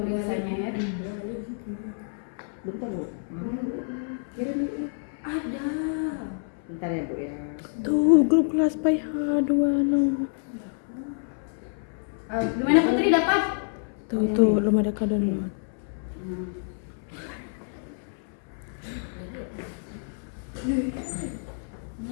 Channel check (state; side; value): silent; right; 60 dB below the other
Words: ya. Bentar Bu. Ada. Bentar ya Bu ya. Tuh grup kelas PH26. Gimana Putri dapat? Tuh belum ada download.